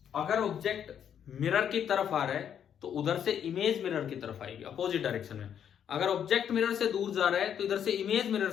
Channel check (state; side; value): quieter; right; 8.8 dB